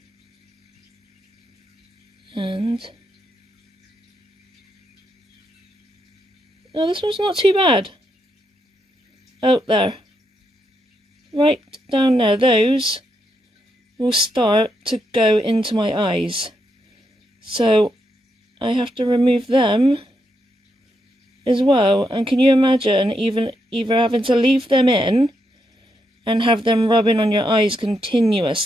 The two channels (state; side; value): normal; both; correlation 0.81